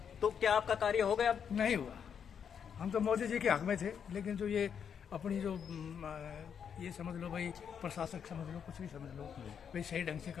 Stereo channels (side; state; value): right; quieter; 7.6 dB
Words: तो क्या आपका कार्य हो गया? नहीं हुआ। हम तो मोदी जी के हक में थे, लेकिन जो ये अपनी जो ये समझ लो भाई प्रशासक समझ लो, कुछ भी समझ लो, भाई सही ढंग से